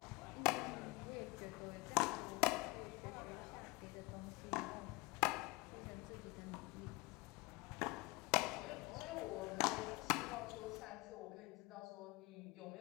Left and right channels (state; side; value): quieter; right; 24.1 dB